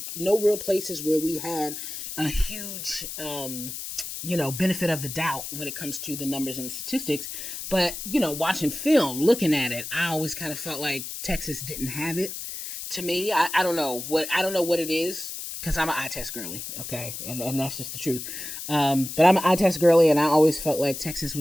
no real places where we had a huge benefit of the doubt when it comes to the numbers and the statistics. But, watching film, looking at it, I always kind of felt like Texas didn't have it. To me, I don't know what it is, because I'm an eye test girly, okay? And that's just the truth. But I'm an eye test girly, and I always felt like Texas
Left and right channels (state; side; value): noise; left; hiss, 8 dB below the sound